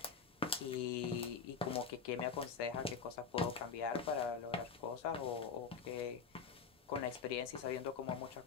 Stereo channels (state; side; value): quieter; right; 5.9 dB